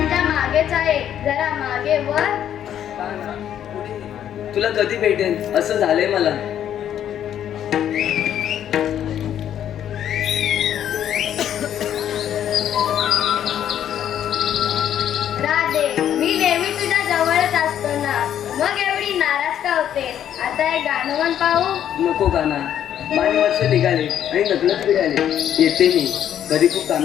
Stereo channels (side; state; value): right; quieter; 10.2 dB